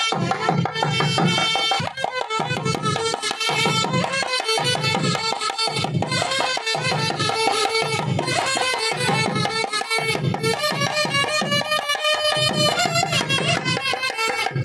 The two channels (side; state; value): both; identical; correlation 1.00